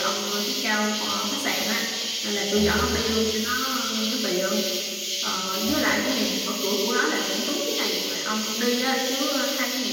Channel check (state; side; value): identical; both; correlation 1.00